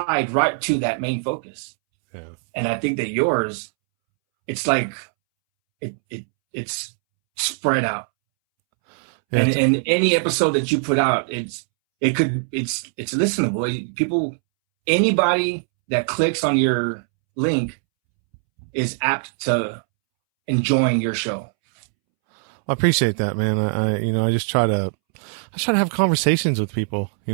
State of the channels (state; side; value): silent; left; 65 dB below the other